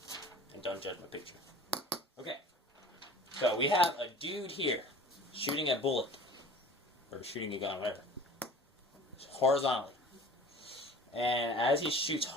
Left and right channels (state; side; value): normal; both; correlation 0.43